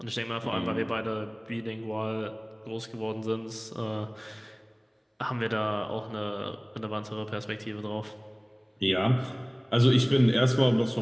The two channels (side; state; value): both; identical; correlation 1.00